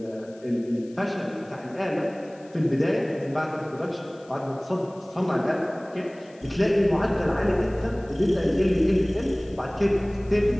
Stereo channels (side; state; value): left; noise; hiss, 28 dB below the sound